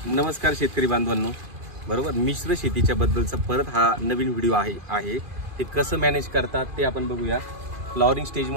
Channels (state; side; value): late; left; 2.4 ms